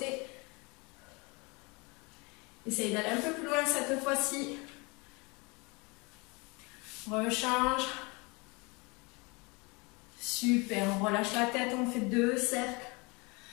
Essaye d'aller un peu plus loin cette fois-ci. Rechange. Super. On relâche la tête. On fait 2 cercles.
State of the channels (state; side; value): quieter; right; 27.9 dB